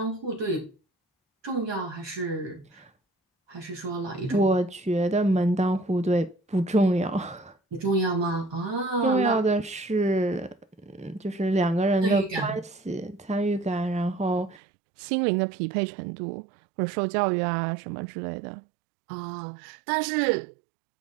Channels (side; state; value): left; drops out; at 14.6 s